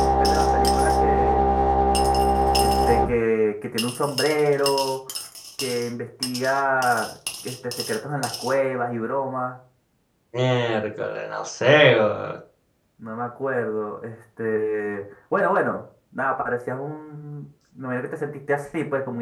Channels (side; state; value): both; identical; correlation 1.00